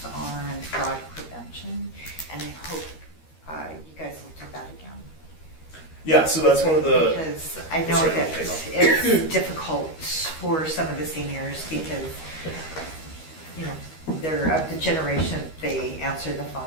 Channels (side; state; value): right; late; 13 ms